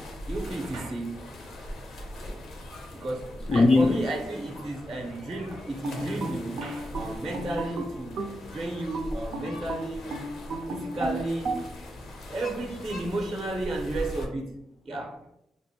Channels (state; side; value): normal; both; correlation 0.86